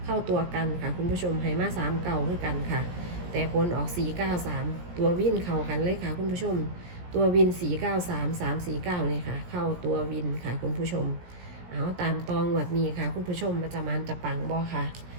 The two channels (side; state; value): left; late; 17 ms